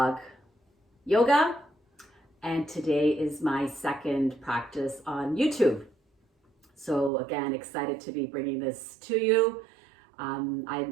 Yoga, and today is my second practice on YouTube. So again, excited to be bringing this to you.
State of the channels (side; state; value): left; drops out; at 7.1 s